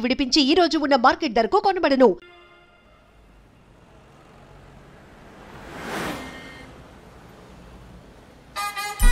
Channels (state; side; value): identical; both; correlation 1.00